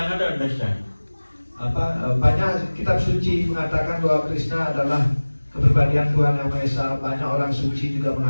understand? Banyak kitab suci mengatakan bahwa Krishna adalah kepribadian Tuhan Yang Maha Esa. Banyak orang suci juga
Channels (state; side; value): inverted; both; correlation -1.00